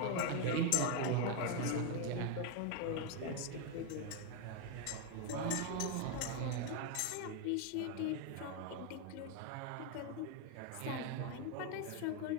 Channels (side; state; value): both; different; correlation 0.01